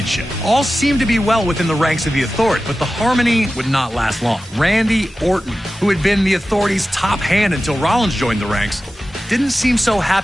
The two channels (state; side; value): normal; both; correlation 0.94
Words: All seemed to be well within the ranks of the Authority, but the harmony would not last long. Randy Orton, who had been the Authority's top hand until Rollins joined the ranks, didn't seem so